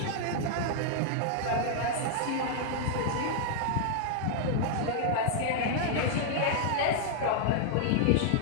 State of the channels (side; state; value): both; different; correlation -0.01